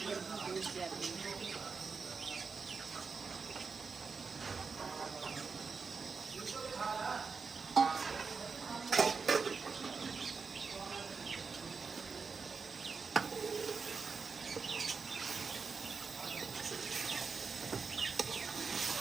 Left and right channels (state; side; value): quieter; left; 5.1 dB